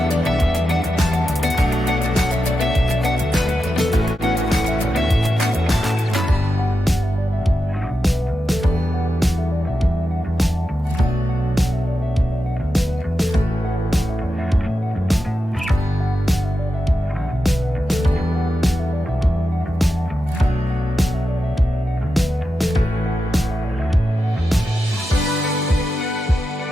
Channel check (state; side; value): normal; both; correlation 0.89